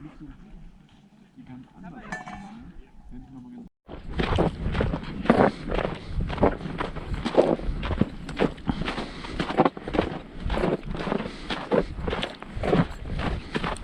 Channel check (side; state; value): both; identical; correlation 1.00